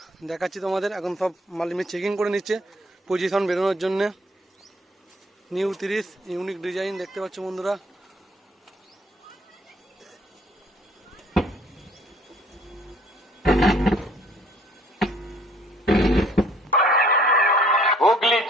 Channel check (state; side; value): normal; both; correlation 0.59